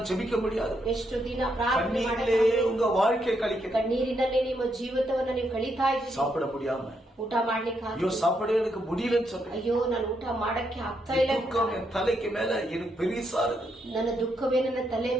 ஜெபிக்க முடியாது. ಎಷ್ಟು ದಿನ ಪ್ರಾರ್ಥನೆ கண்ணீரிலே உங்க வாழ்க்கை கழிக்க, ಕಣ್ಣೀರಿನಲ್ಲೇ ನಿಮ್ಮ ಜೀವಿತವನ್ನ ನೀವು ಕಳೀತಾ ಇದ್ದೀರಿ. சாப்பிட முடியாம, ಊಟ ಮಾಡ್ಲಿಕ್ಕೆ ஐயோ சாப்பிட எனக்கு முடியலன்னு சொல்றேன். ಅಯ್ಯೋ ನಾನು ಊಟ ಮಾಡಕ್ಕೆ ಆಗ್ತಾ ಇಲ್ಲ. துக்கம் என் தலைக்கு மேல எனக்கு பெரிசா இருக்கு. ನನ್ನ ದುಃಖವೇ ನನ್ನ ತಲೆಯ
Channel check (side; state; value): both; normal; correlation 0.78